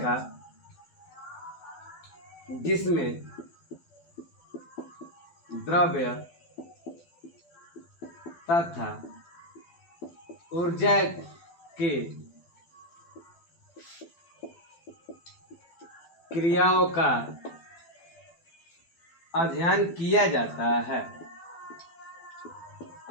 जिसमें द्रव्य तथा ऊर्जा के क्रियाओं का अध्ययन किया जाता है।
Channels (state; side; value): late; right; 12 ms